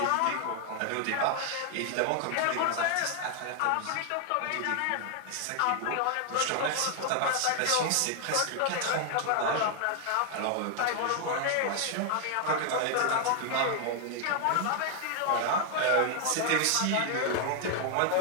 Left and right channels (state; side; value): different; both; correlation 0.00